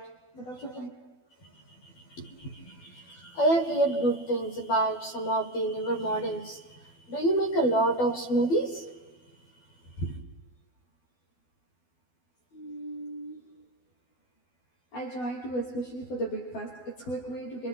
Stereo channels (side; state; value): right; late; 12 ms